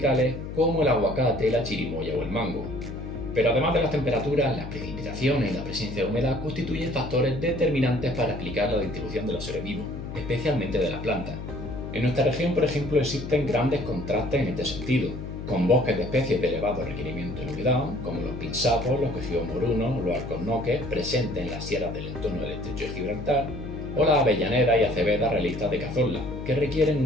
como el aguacate, la chirimoya o el mango. Pero además de las temperaturas, las precipitaciones y la presencia de humedad constituyen factores determinantes para explicar la distribución de los seres vivos, especialmente de las plantas. En nuestra región, por ejemplo, existen grandes contrastes en este sentido, con bosques de especies de elevado requerimiento en humedad, como los pinsapos, los quejigos morunos, los alcornoques, presentes en las sierras del entorno del estrecho de Gibraltar, o las avellaneras y acevedas realistas de Cazorla, que requieren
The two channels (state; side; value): noise; left; hum, 8 dB below the sound